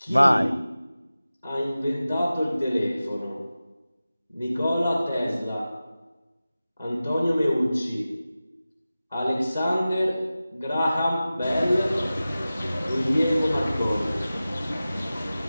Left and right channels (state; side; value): inverted; both; correlation -0.95